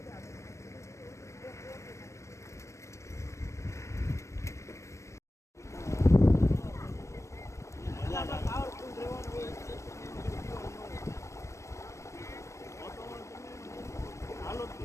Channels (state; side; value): late; right; 0.14 ms